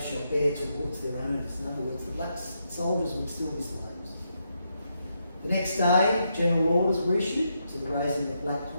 shall bear towards their owners. In other words, the black soldiers would still be slaves. The next day, general orders were issued to the raising of black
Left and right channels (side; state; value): both; inverted; correlation -0.81